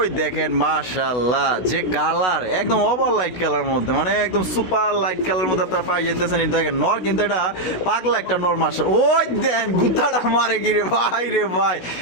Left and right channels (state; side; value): late; right; 16 ms